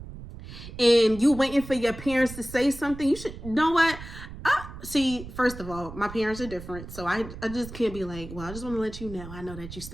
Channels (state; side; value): noise; right; rumble, 13 dB below the sound